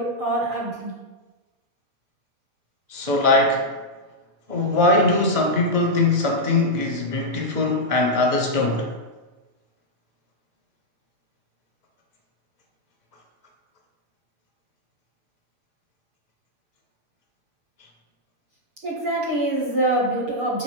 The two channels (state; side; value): late; left; 6.7 ms